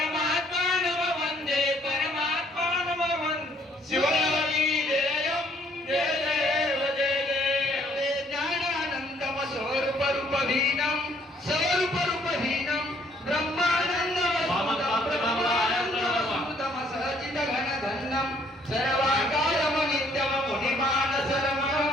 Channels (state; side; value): normal; both; correlation 0.64